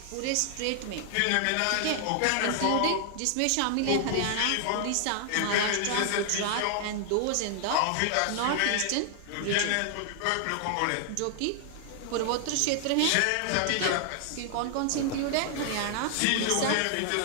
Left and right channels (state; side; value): different; both; correlation 0.00